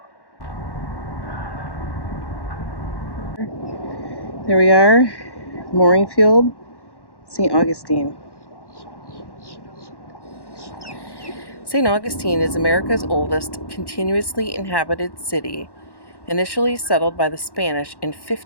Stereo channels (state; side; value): late; right; 1.1 ms